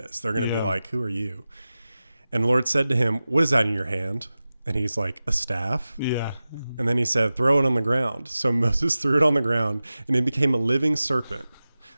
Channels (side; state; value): both; inverted; correlation -0.95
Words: They're going to be like, who are you? And the Lord said to him, what is that in your hand? And he's like, a staff. Yeah. And then he said, throw it on the ground. So Moses threw it on the ground, and it became a living serpent,